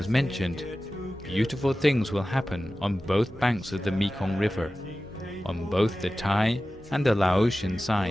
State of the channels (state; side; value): normal; both; correlation 0.95